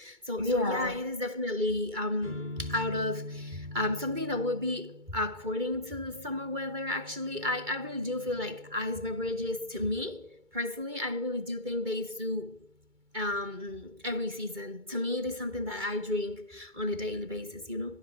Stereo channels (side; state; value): left; late; 2.2 ms